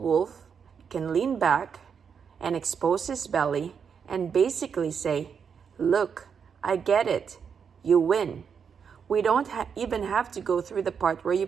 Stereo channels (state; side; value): quieter; left; 6.8 dB